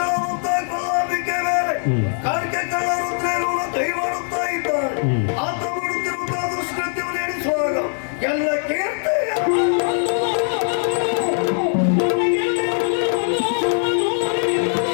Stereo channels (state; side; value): silent; right; 65 dB below the other